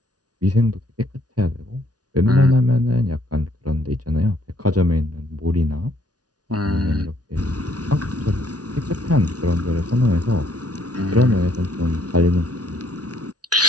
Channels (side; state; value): left; late; 0.69 ms